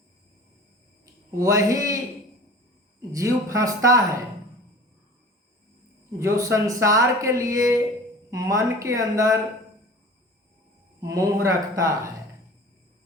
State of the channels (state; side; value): normal; both; correlation 0.41